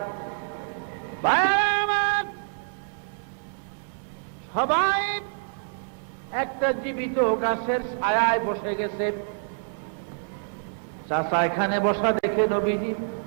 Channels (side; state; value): left; silent; 60 dB below the other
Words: সবাই একটা জীবিত গাছের ছায়ায় বসে গেছে। চাচা এখানে বসা দেখে নবীজি